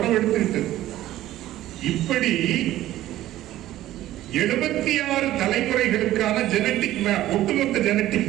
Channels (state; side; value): quieter; left; 14.3 dB